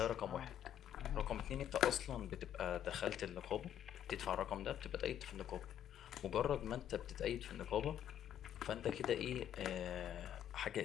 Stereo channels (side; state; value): right; quieter; 10.4 dB